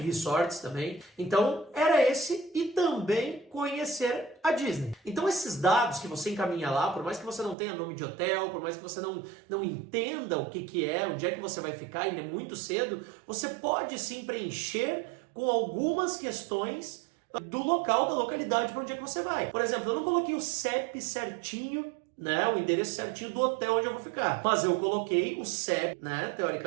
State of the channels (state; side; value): drops out; left; at 7.6 s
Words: resorts também, então era esse e também conhecer a Disney. Então esses dados que você encaminha lá, por mais que você não tenha nome de hotel, por mais que você não entenda o que é, onde é que você vai ficar, ainda é muito cedo, você pode sim preencher com algumas questões do local, da localidade para onde é que você vai. Por exemplo, eu não coloquei o CEP certinho, né, o endereço certinho do hotel onde eu vou ficar. Mas eu coloquei o CEP, né,